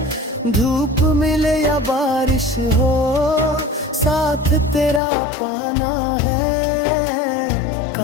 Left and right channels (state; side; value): drops out; right; at 5.0 s